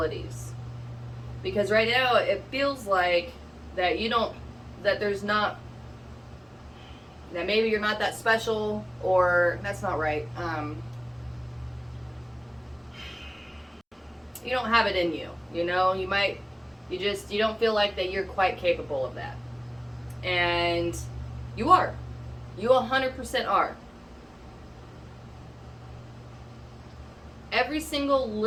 Because right now it feels like that that maybe you're not that special, or that's not right. You don't have it in you, you know, you don't feel like that you're quite capable of that. And you are. You 100% are. Every single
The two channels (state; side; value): identical; both; correlation 1.00